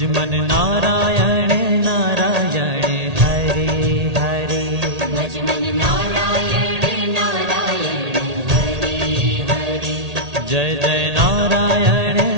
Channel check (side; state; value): left; late; 1.8 ms